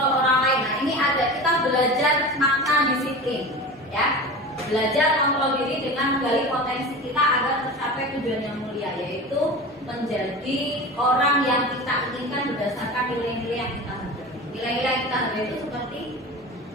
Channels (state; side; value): normal; both; correlation 0.31